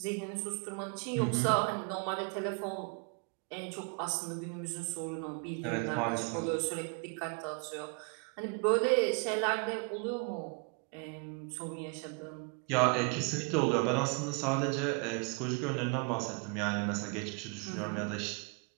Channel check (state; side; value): quieter; left; 34.7 dB